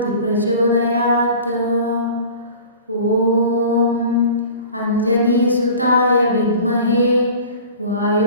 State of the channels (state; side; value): inverted; both; correlation -0.42